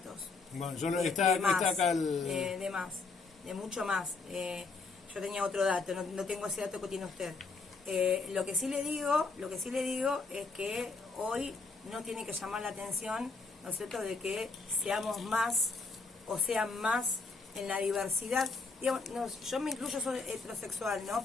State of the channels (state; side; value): quieter; right; 4.2 dB